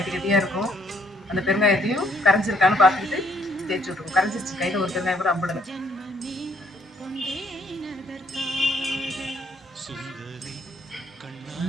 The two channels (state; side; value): normal; both; correlation 0.67